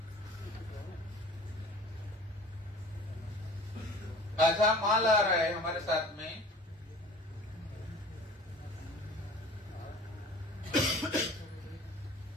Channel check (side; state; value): both; normal; correlation 0.44